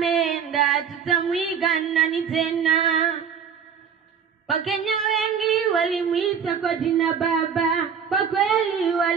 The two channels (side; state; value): left; quieter; 7.2 dB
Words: tutamwiga nani tena? Wakenya wengi walimuita kwa jina baba, kwa kweli